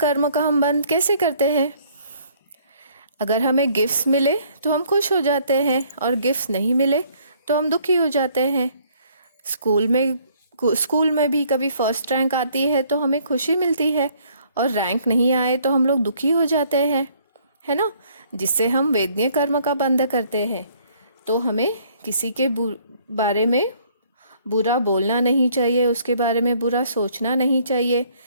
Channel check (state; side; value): inverted; both; correlation -0.62